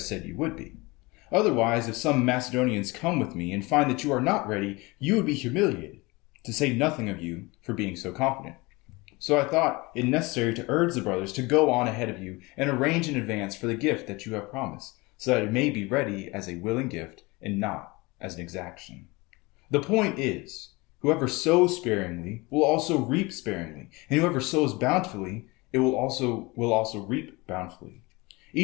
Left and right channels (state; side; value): quieter; right; 24.1 dB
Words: you would be. Otherwise, if some Macedonians come with me and find that you are not ready, you would be humiliated, to say nothing of you for being so confident. So I thought it necessary to urge the brothers to go on ahead of you and arrange in advance for the gift that you have promised, so that it may be ready as a willing gift and not as an exaction. The point is, whoever sows sparingly will also reap sparingly, and whoever sows bountifully, it will also reap bountifully.